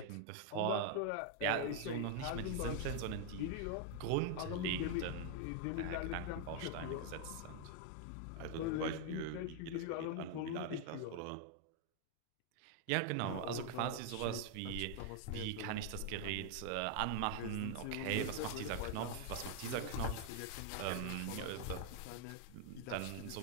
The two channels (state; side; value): different; both; correlation 0.00